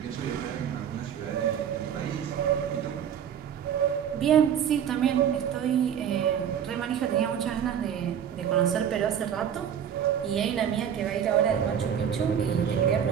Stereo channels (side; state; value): left; quieter; 8.8 dB